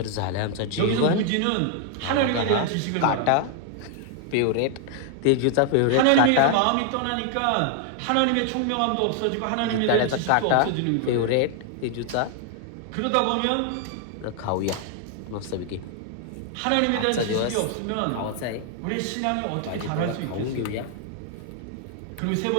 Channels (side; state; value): both; different; correlation 0.00